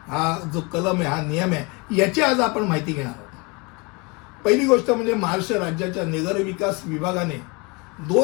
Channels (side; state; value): right; quieter; 28.5 dB